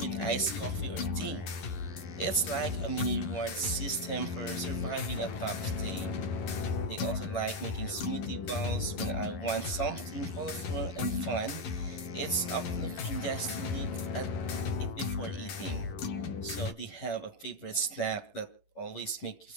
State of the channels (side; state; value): right; late; 11 ms